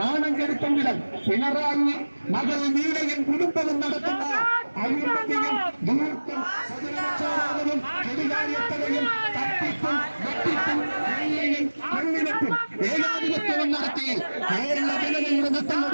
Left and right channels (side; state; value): both; inverted; correlation -1.00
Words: കെടുത്തെങ്കിലും പിണറായി മകൾ നീളയും കുടുംബവും നടത്തുന്ന അഴിമതിയും ദൂർത്തും സദനക്ഷോഭവും കെടുകാര്യത്തലയും തട്ടിപ്പും വെട്ടിപ്പും കൊള്ളയും കൊള്ളിനത്തും ഏകാധിപത്യവും നടത്തി കേരള ജനതയുടെ നട്ടം